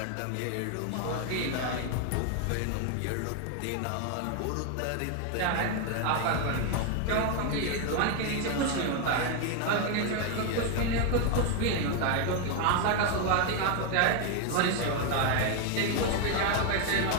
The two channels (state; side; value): different; both; correlation 0.01